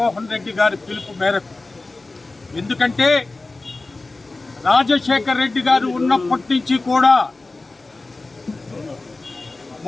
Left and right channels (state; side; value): quieter; right; 3.3 dB